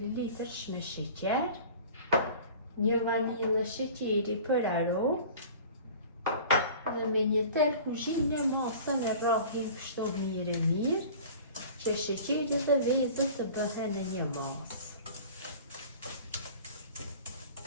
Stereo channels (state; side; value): inverted; both; correlation -0.43